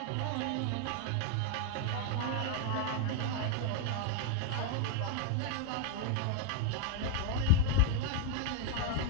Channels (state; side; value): different; both; correlation 0.01